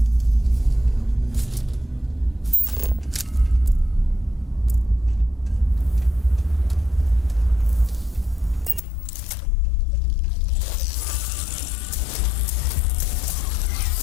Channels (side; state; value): right; drops out; at 8.8 s